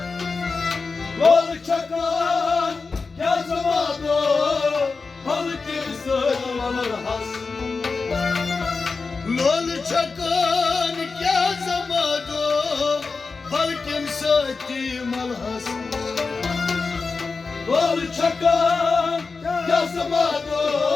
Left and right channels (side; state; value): right; quieter; 4.4 dB